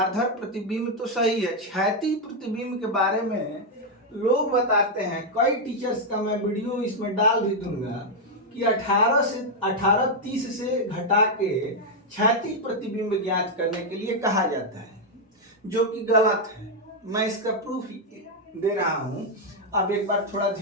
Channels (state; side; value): normal; both; correlation 0.00